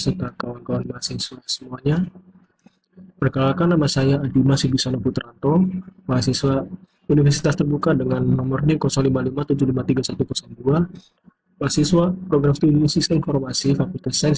kawan-kawan mahasiswa semuanya. Perkenalkan, nama saya Adima Sibisana Putranto, mahasiswa Universitas Terbuka dengan nomor NIM 0557531102, mahasiswa Program Studi Sistem Informasi Fakultas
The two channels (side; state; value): both; identical; correlation 1.00